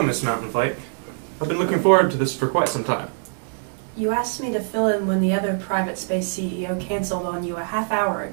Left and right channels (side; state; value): left; silent; digital silence